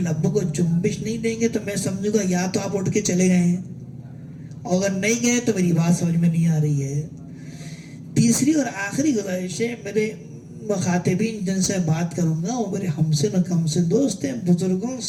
کو جنبش نہیں دیں گے تو میں سمجھوں گا یا تو آپ اٹھ کے چلے گئے ہیں، اور اگر نہیں گئے تو میری بات سمجھ میں نہیں آ رہی ہے۔ تیسری اور آخری گزارش ہے، میرے مخاطبین جن سے بات کروں گا وہ میرے ہمسن و کمسن دوست ہیں، بزرگوں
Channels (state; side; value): identical; both; correlation 1.00